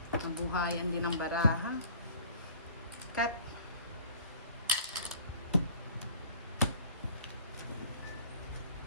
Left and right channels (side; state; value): both; inverted; correlation -0.50